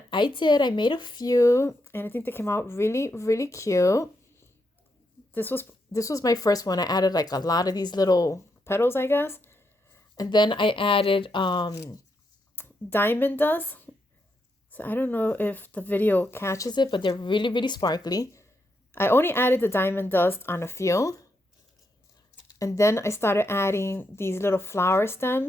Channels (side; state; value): both; normal; correlation 0.81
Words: I did. I made a few, and I think they came out really, really cute. This was my first one. I added like a lot of these little petals, I guess. And then I added diamond dust. So I don't know if the video catches it, but they're really, really sparkly. I only added the diamond dust on a few. And then I started adding these little flower